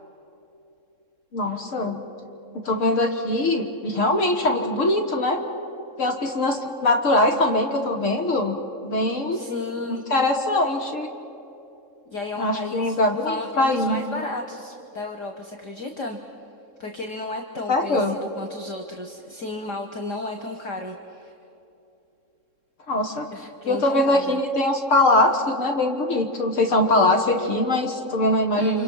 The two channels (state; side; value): late; right; 3.7 ms